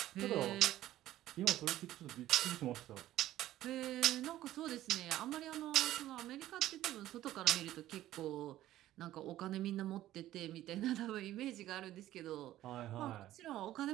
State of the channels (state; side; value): quieter; left; 14.1 dB